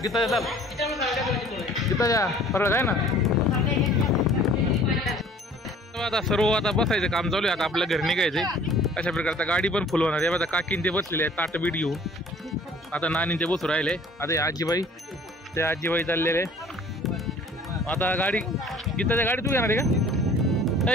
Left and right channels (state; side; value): normal; both; correlation 0.52